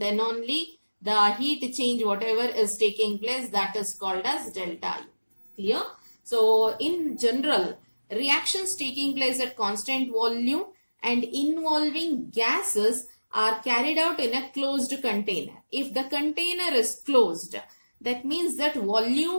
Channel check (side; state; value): both; inverted; correlation -1.00